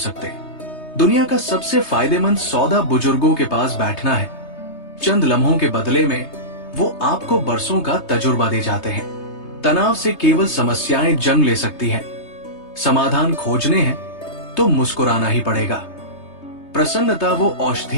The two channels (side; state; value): right; late; 3.3 ms